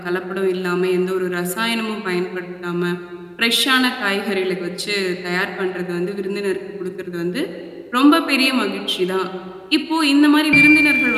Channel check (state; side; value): identical; both; correlation 1.00